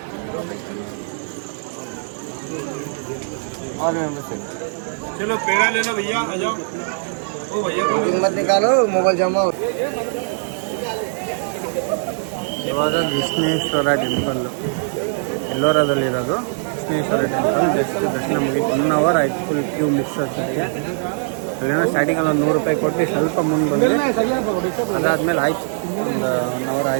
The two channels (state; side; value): silent; left; 65 dB below the other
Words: ऑल मेंबर्स चलो पेड़ा ले लो भैया, आ जाओ। ओ भैया को ಕಿಮ್ಮತ್ ನಿಕಾಲು ಮೊಬೈಲ್ ಜಮಾ ಇವಾಗ ವಿಷ್ಣೇಶ್ವರ ಟೆಂಪಲ್ಲು ಎಲ್ಲೋರದಲ್ಲಿರೋದು ವಿಷ್ಣೇಶ್ವರ ಟೆಂಪಲ್. ಜಸ್ಟ್ ದರ್ಶನ ಮುಗಿತು, 1 ಅವರ್ ಆಯಿತು. ಫುಲ್ ಕ್ಯೂ ಮಿಸ್ ಆಗ್ತಿದೆ. ಅಲ್ಲೇನೋ ಸ್ಟಾರ್ಟಿಂಗಲ್ಲಿ ಒಂದು 100 ರೂಪಾಯಿ ಕೊಟ್ಟು ಸ್ವಲ್ಪ ಮುಂದೆ ಬಂದು ಅದಾದಮೇಲೆ ಆಯಿತು, ಒಂದು 1 ಅವರ್